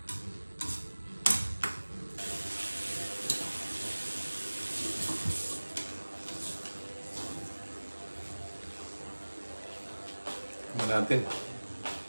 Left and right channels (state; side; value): inverted; both; correlation -1.00